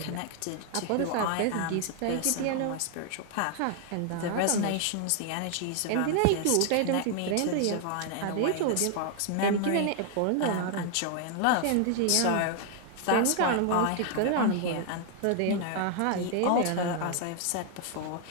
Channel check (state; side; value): different; both; correlation 0.00